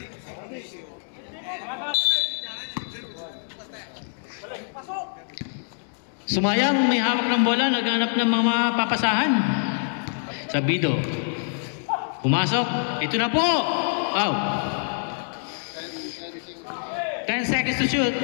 Sumayang, may hawak ng bola, naghanap ng mga papasahan. Sabido. Pumasok. Ito na po. Wow. 10 seconds to shoot.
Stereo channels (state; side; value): silent; right; 62 dB below the other